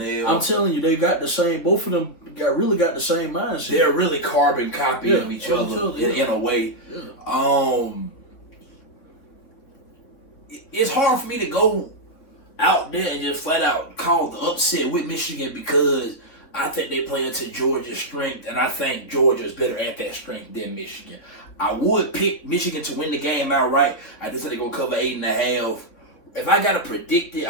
I'm telling you, they got the same. Both of them really got the same mindset. They're really carbon copy of each other in a way. Yeah. It's hard for me to go out there and just flat out call the upset with Michigan because I think they play into Georgia's strength, and I think Georgia is better at that strength than Michigan. I would pick Michigan to win the game outright. I just think they're going to cover 8.5. If I got to predict it,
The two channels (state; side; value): late; right; 3.6 ms